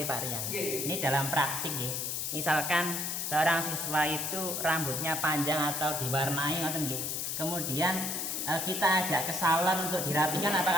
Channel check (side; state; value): left; noise; hiss, 2 dB below the sound